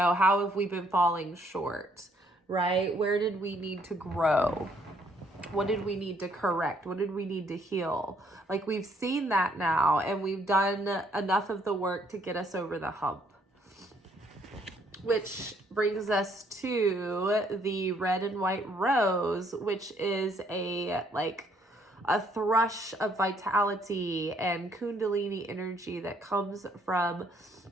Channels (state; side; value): normal; both; correlation 0.67